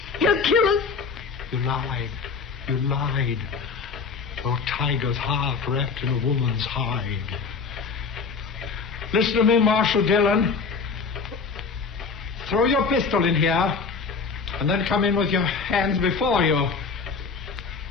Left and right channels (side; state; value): right; quieter; 5.0 dB